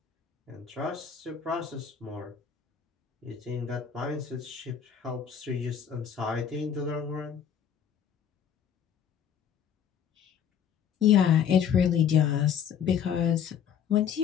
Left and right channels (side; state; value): right; quieter; 8.2 dB